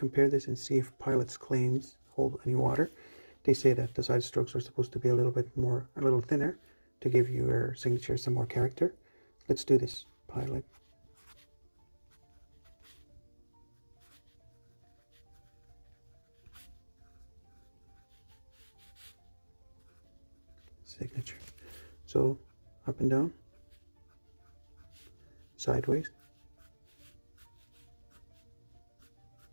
this and see if Pilot's claims hold any water. They say that the side strokes are supposed to be a little thinner to give your signature some more character. Let's do this. Pilot. Signature. So up and down, sideways,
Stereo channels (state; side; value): inverted; both; correlation -1.00